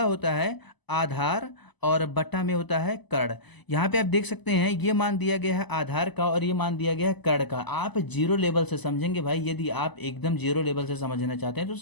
होता है आधार और बटा में होता है कर्ण। यहाँ पे आप देख सकते हैं ये मान दिया गया है आधार का और ये मान दिया गया है कर्ण का। आप जीरो लेवल से समझेंगे भाई, यदि आप एकदम जीरो लेवल से समझना चाहते हैं तो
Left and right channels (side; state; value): right; late; 1.0 ms